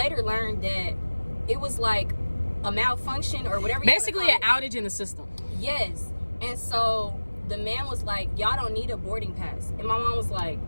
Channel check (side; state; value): both; inverted; correlation -1.00